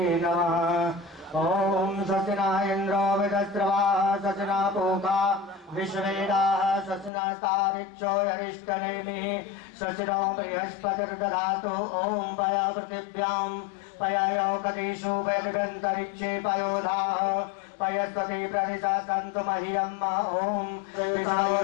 नमः। ओम सचना इंद्रो विदस्रवा सचना पोका विश्वेदाः सचनास्तारिक्षो यरिष्टनेमि सचनो बृहस्पतिर्दधातु। ओम पया पृथिव्यां पयायोकदिषु वैदगन्तरिक्षे पयोधाः पयस्पति प्रदिशा सन्तु मह्यम्। ओम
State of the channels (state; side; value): drops out; right; at 7.1 s